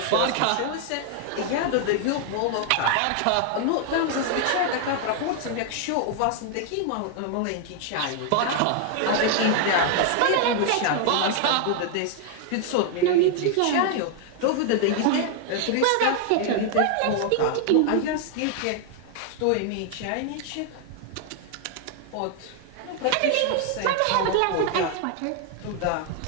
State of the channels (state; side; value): different; both; correlation 0.00